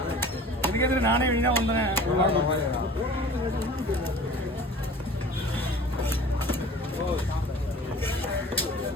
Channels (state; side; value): normal; both; correlation 0.43